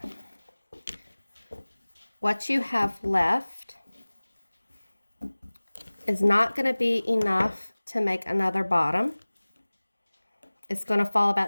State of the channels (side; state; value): both; inverted; correlation -1.00